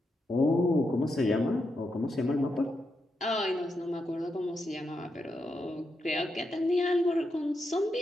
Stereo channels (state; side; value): normal; both; correlation 0.84